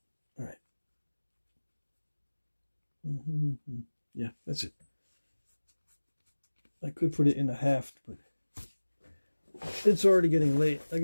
All right. Yeah, that's it. I could put it in a haft, but it's already getting late. I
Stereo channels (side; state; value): both; inverted; correlation -1.00